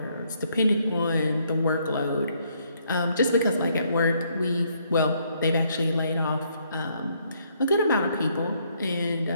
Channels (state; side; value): inverted; both; correlation -0.70